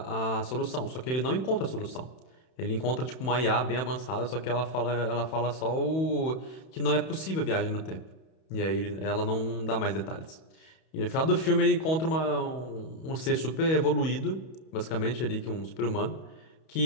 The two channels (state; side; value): late; right; 31 ms